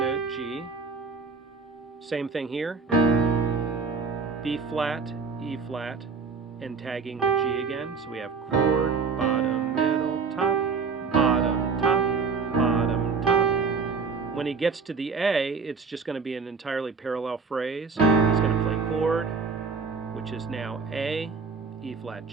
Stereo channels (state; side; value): quieter; left; 4.9 dB